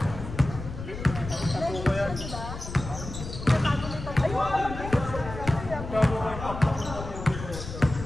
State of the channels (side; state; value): left; noise; rumble, 9 dB below the sound